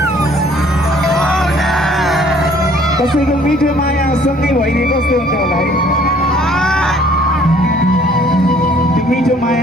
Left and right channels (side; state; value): both; normal; correlation 0.58